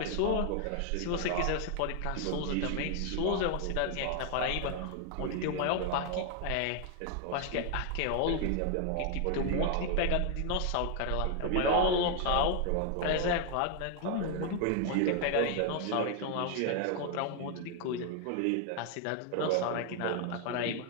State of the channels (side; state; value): both; different; correlation 0.00